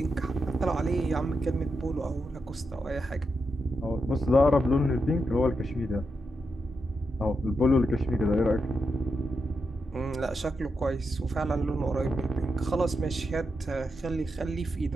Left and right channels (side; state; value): both; normal; correlation 0.85